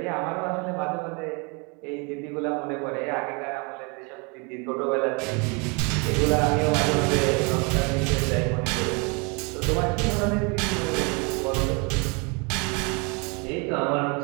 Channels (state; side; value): quieter; left; 31.7 dB